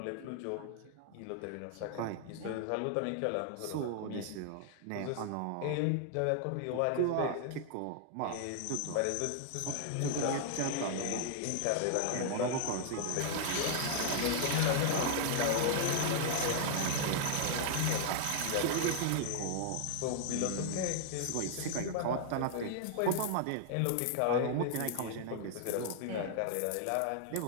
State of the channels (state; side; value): different; both; correlation 0.00